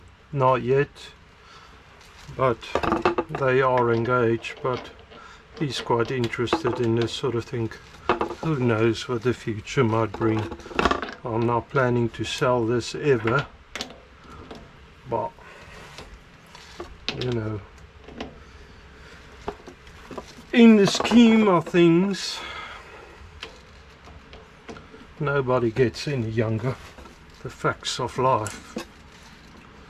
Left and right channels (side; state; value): both; identical; correlation 1.00